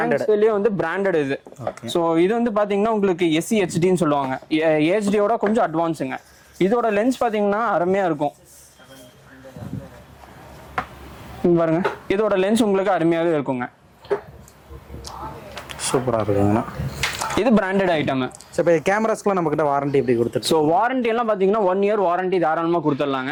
வந்து பிராண்டட் இது. சோ இது வந்து பாத்தீங்கன்னா உங்களுக்கு SEHDன்னு சொல்லுவாங்க. HDயோட கொஞ்சம் அட்வான்ஸுங்க. இதோட லென்ஸ் பாத்தீங்கன்னா அருமையா இருக்கும் பாருங்க. இதோட லென்ஸ் உங்களுக்கு அருமையாவே இருக்குங்க. சூப்பரா இருக்குங்க. இது பிராண்டட் ஐட்டம். இப்போ கேமராஸ்க்குலாம் நம்ம கிட்ட வாரண்டி எப்படி கொடுத்துரு? ஸோ வாரண்டி எல்லாம் பாத்தீங்கன்னா 1 year வாரண்டி தாராளமா கொடுத்துடலாங்க.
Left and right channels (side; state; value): both; identical; correlation 1.00